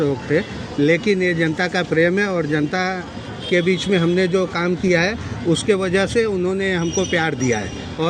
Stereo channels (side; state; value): both; identical; correlation 1.00